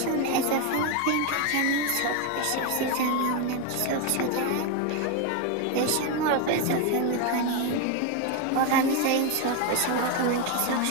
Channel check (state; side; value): different; both; correlation 0.02